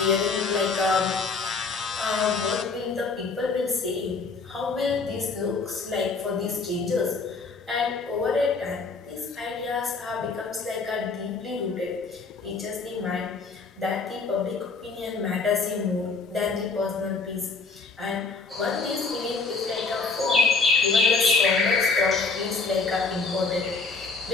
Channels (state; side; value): quieter; right; 4.3 dB